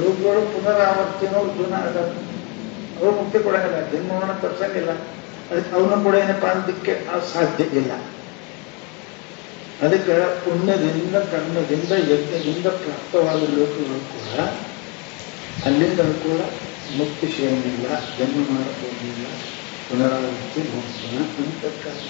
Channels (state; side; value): quieter; right; 31.9 dB